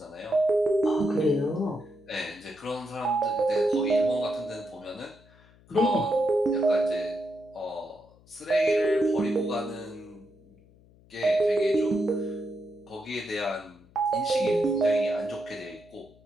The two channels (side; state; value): left; noise; hum, 27 dB below the sound